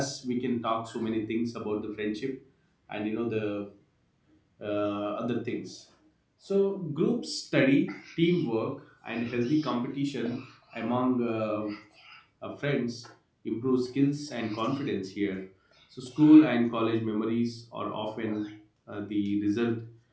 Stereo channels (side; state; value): both; identical; correlation 1.00